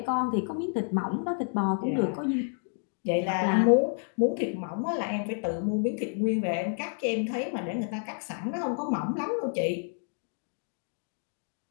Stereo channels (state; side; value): silent; right; 58 dB below the other